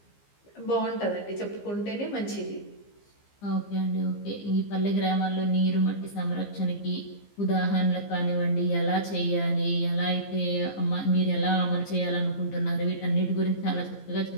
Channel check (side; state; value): right; late; 15 ms